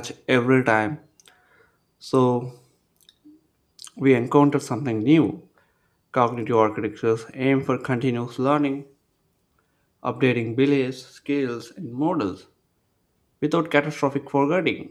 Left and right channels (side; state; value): both; identical; correlation 1.00